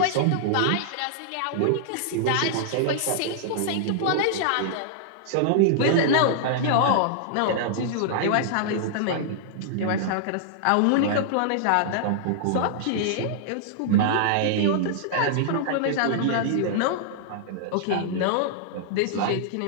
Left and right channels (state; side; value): different; both; correlation -0.01